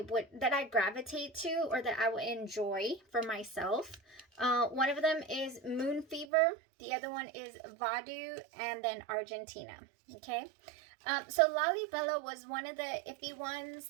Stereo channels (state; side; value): drops out; left; at 6.3 s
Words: gravitate to or that I would enjoy for myself. One of them is Moon Fever, the other one is Vaadhoo, and then Argentina. Okay. So Lalibela was one of the iffy ones